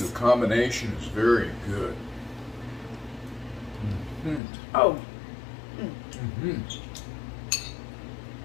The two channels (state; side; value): drops out; right; at 4.4 s